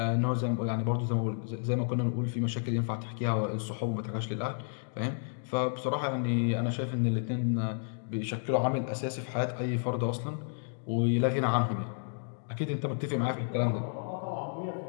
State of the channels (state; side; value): silent; right; digital silence